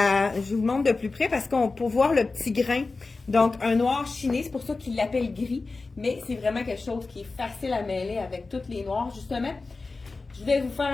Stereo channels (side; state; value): right; quieter; 3.8 dB